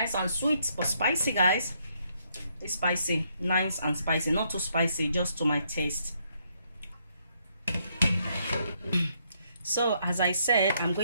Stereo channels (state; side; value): inverted; both; correlation -0.73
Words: and sweet, but spicy, guys. It's spicy, nice and spicy, not too spicy, just to my taste. So as I said, I'm